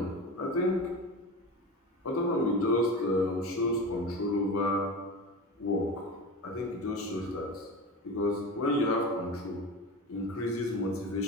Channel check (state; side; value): normal; both; correlation 0.28